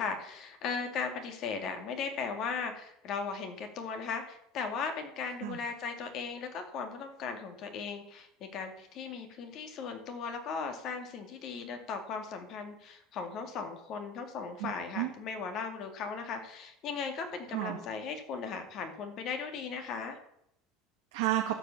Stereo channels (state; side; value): normal; both; correlation 0.31